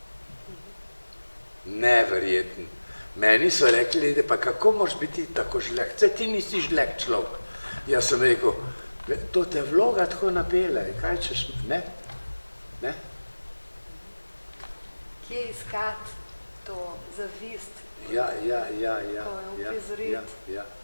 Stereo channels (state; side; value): inverted; both; correlation -1.00